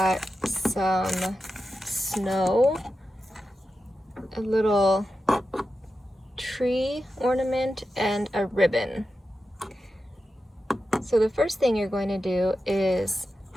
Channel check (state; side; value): normal; both; correlation 0.91